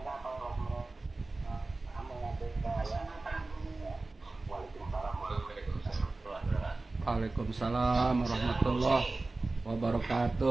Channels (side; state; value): left; quieter; 3.3 dB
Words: kalau mengadakan Waalaikumsalam warahmatullahi